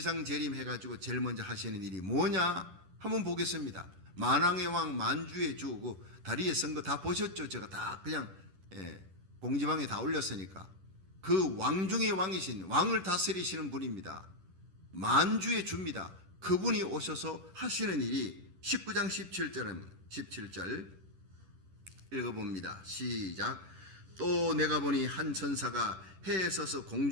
재림해가지고 제일 먼저 하시는 일이 뭐냐 한번 보겠습니다. 만왕의 왕 만주의 주, 그 다리에 쓴 거 다 보셨죠? 제가 다 그냥 공지방에 다 올렸으니까. 그 왕 중의 왕이신, 왕을 다스리시는 분입니다. 만주의 주입니다. 그분이 오셔서 하시는 일이 19장 17절입니다. 17절 읽어봅니다. 시작. 또 내가 보니 한 천사가 해에 서서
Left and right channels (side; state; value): left; late; 11 ms